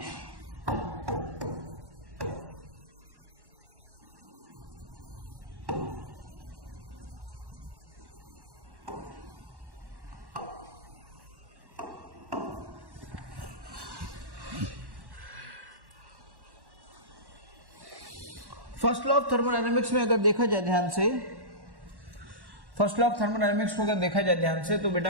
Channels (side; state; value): left; late; 1.1 ms